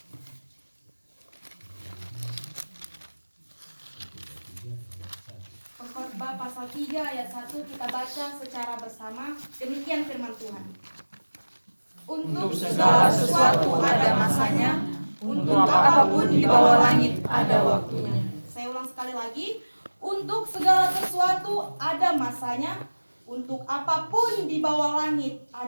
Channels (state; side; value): inverted; both; correlation -1.00